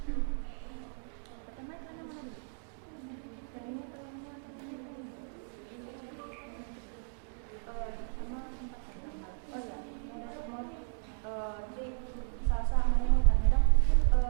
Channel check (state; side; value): silent; left; 55 dB below the other